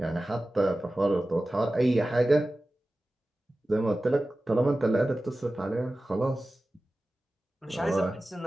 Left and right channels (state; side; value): normal; both; correlation 0.95